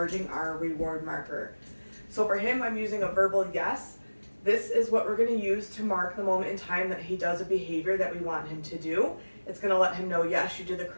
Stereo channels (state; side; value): inverted; both; correlation -1.00